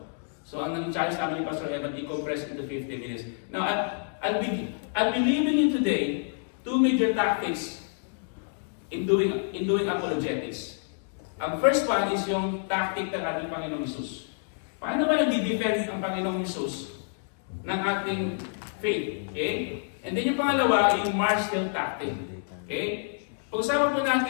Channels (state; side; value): silent; right; digital silence